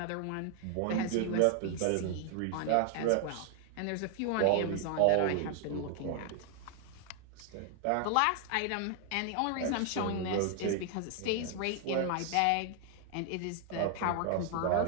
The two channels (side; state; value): both; different; correlation 0.00